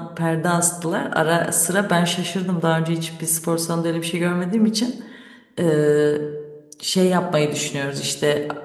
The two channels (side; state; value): both; identical; correlation 1.00